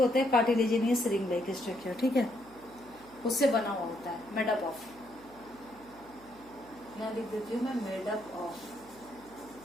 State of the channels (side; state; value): right; noise; hum, 23 dB below the sound